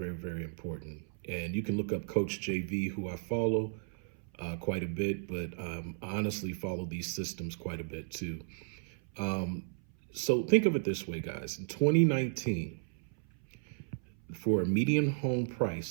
very important. And you can look up Coach JV, who I follow quite a bit, but I honestly follow these systems quite a bit too. Um, so think of it this way, guys. In 2019, for a median home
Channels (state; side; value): silent; left; 55 dB below the other